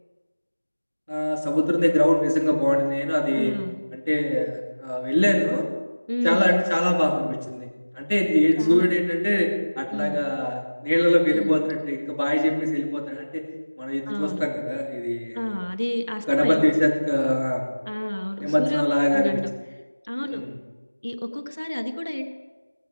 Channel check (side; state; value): both; inverted; correlation -1.00